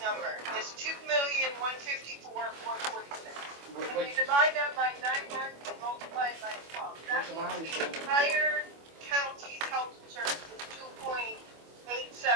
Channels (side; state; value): left; late; 25 ms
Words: number, it's $2,154,446. And you divide that by 9 months and multiply it by 12. That means the entire county's health insurance is